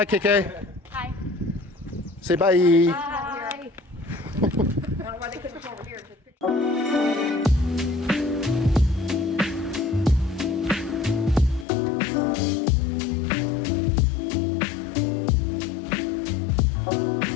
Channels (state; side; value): drops out; right; at 11.7 s